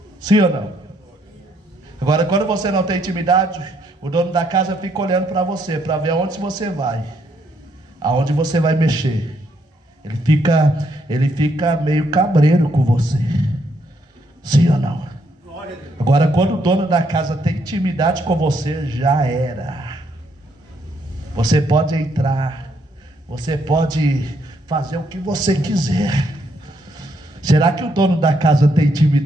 Sim ou não? Agora, quando você não tem intimidade, o dono da casa fica olhando para você, para ver aonde você vai, aonde você vai mexer. Ele fica meio cabreiro com você. Sim ou não? Agora, quando o dono da casa tem intimidade com você, já era. Você pode entrar, você pode fazer o que você quiser. Será que o dono da casa tem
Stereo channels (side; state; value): both; normal; correlation 0.73